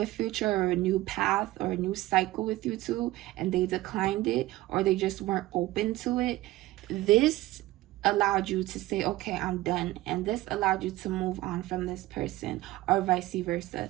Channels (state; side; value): quieter; left; 17.3 dB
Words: future or a new path or a new cycle with you two, and they declined it, or they just weren't open to it. This allowed you to say, okay, I'm done. And this allowed you to move on from this person, or vice versa.